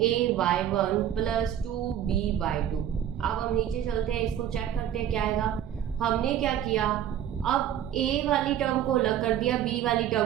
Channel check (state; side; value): quieter; left; 10.5 dB